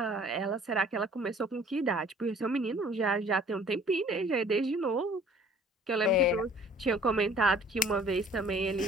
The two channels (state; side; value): normal; both; correlation 0.53